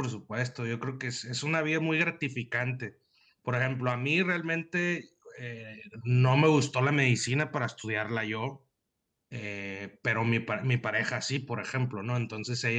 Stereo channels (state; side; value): identical; both; correlation 1.00